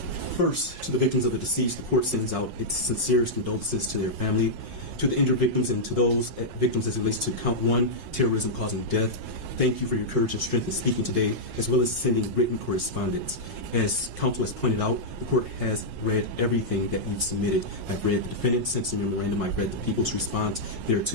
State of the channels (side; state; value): left; late; 5.5 ms